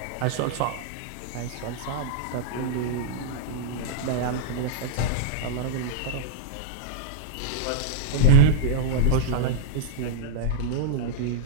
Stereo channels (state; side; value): different; both; correlation -0.02